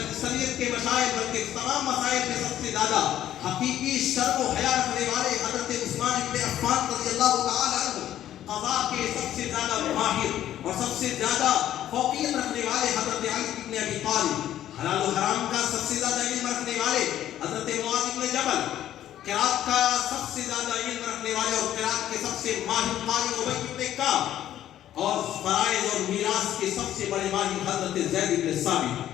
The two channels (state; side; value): quieter; right; 12.0 dB